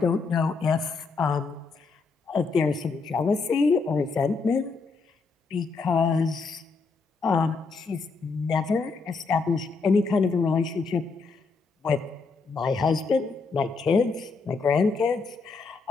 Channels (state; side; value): quieter; right; 4.4 dB